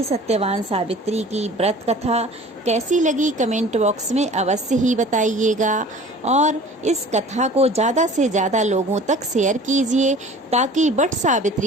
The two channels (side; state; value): both; normal; correlation 0.45